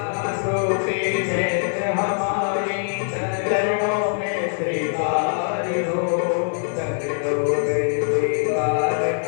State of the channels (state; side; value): silent; right; 64 dB below the other